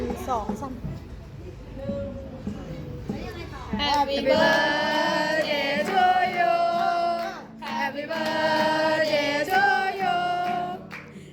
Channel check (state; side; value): identical; both; correlation 1.00